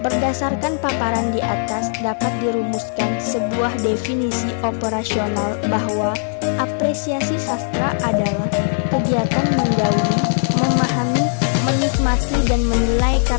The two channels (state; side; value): silent; right; digital silence